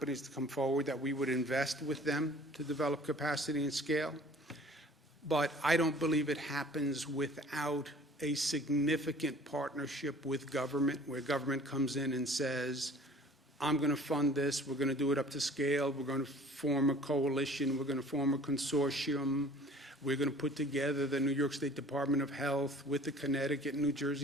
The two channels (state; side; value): normal; both; correlation 0.49